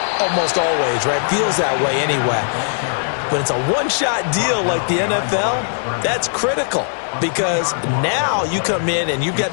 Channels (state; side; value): silent; right; digital silence